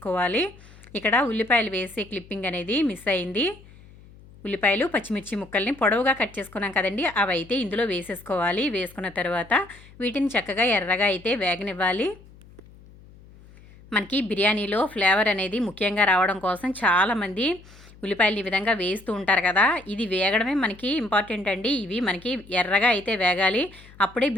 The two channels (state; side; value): noise; left; hum, 23 dB below the sound